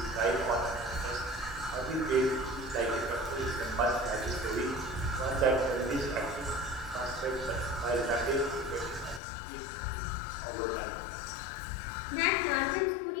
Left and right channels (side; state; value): right; drops out; at 9.2 s